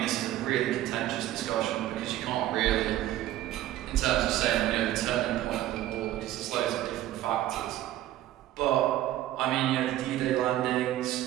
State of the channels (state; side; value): quieter; left; 14.0 dB